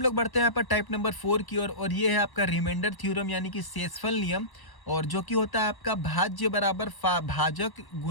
लोग बढ़ते हैं यहाँ पर टाइप नंबर 4 की ओर, और ये है आपका रिमाइंडर थ्योरम यानी कि शेषफल नियम। और जो कि होता है आपका भाज्य बराबर भाजक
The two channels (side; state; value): right; late; 1.0 ms